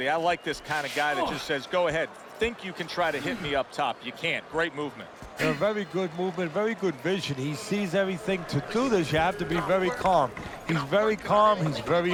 I like this kind of guy that just says, go ahead. Think you can try to hit me up top. You can't. Great movement. A very good movement, very good vision. He sees everything. To do this, you have to be very calm. He's very calm. He's very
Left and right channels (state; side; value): identical; both; correlation 1.00